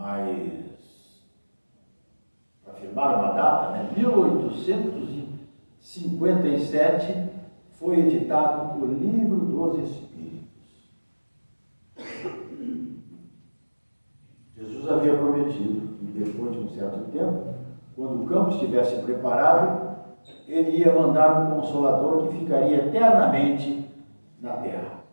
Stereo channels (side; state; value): both; inverted; correlation -1.00